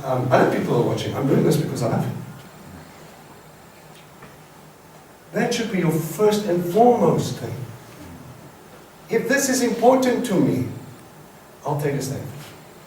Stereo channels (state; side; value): identical; both; correlation 1.00